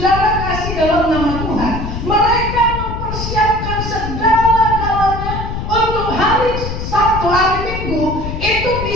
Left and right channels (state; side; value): noise; left; rumble, 5 dB below the sound